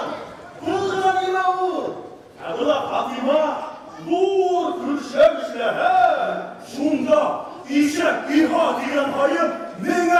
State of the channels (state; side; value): identical; both; correlation 1.00